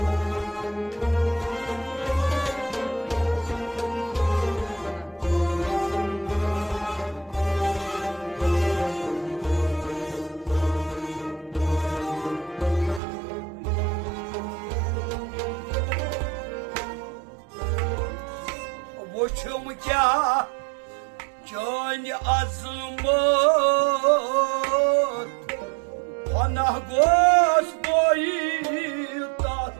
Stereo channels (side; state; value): left; drops out; at 13.0 s